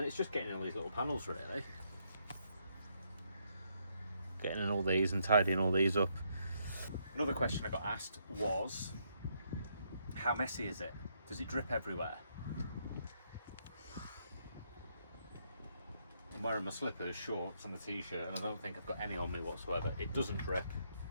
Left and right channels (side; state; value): both; inverted; correlation -0.75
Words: it's just getting in all these little panels, really. Getting in all these and tidying all these up. Another question I got asked was, how messy is it? Does it drip everywhere? I'm wearing my slippers, shorts and a t-shirt, and I don't think I've got any on me whatsoever. It doesn't drip,